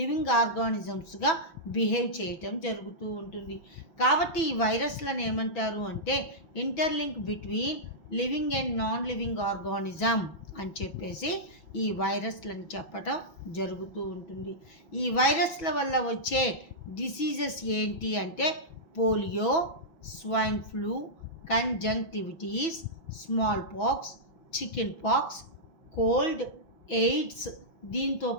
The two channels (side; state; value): right; late; 6.1 ms